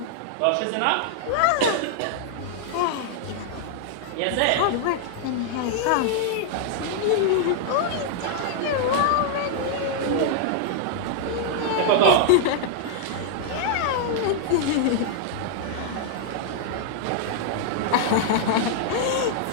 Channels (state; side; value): different; both; correlation -0.01